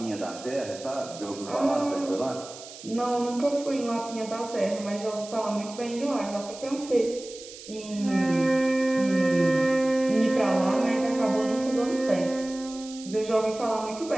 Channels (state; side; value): noise; right; hiss, 15 dB below the sound